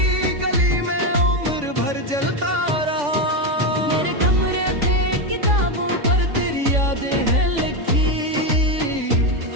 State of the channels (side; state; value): left; late; 3.5 ms